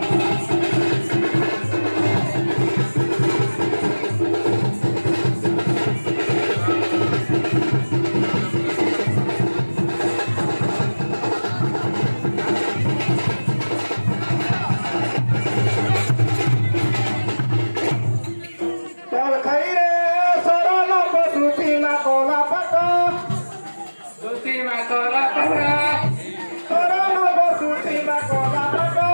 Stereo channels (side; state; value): both; inverted; correlation -1.00